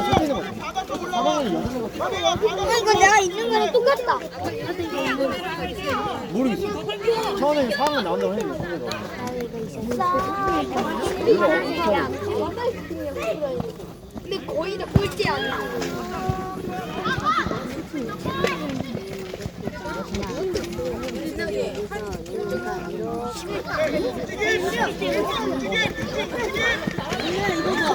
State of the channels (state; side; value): identical; both; correlation 1.00